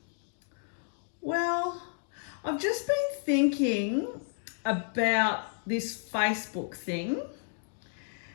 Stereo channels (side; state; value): right; silent; digital silence